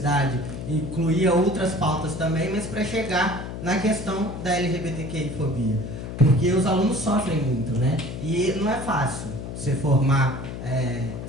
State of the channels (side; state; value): left; noise; hum, 8 dB below the sound